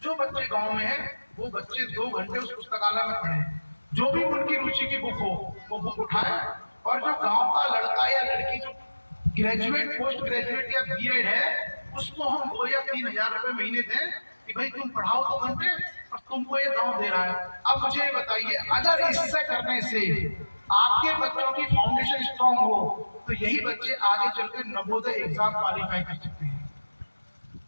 बच्चे गांव में हैं, वो बच्चे 2 घंटे उस पुस्तकालय में पढ़े। जो भी उनकी रुचि की बुक हो, वो बुक उठाए। और जो गांव का लड़का या लड़की जो ग्रेजुएट, पोस्ट ग्रेजुएट या B.Ed है, उसको हम 2 या 3,000 रुपए महीने दें कि भाई तुम पढ़ाओ 2 घंटे और तुमको ये गांव दे रहा है। अब मुझे ये बताइए, अगर इससे करने से आपके बच्चों की फाउंडेशन स्ट्रांग हो तो यही बच्चे आगे चलकर नवोदय एग्जाम क्वालिफाई कर सकते हैं,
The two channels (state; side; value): inverted; both; correlation -1.00